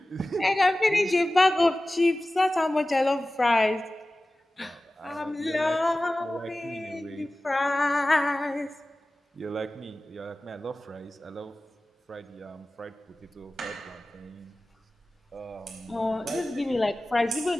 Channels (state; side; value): normal; both; correlation 0.96